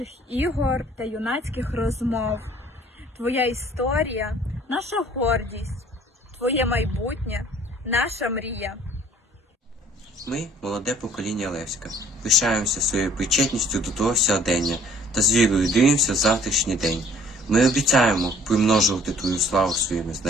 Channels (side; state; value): both; normal; correlation 0.55